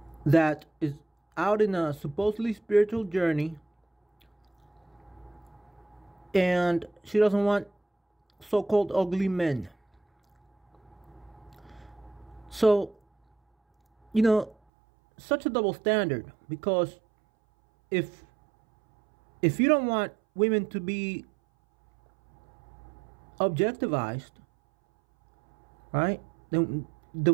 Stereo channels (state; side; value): drops out; left; at 14.6 s